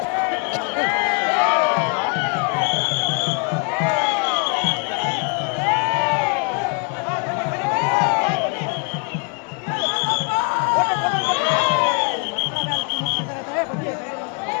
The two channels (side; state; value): right; quieter; 36.9 dB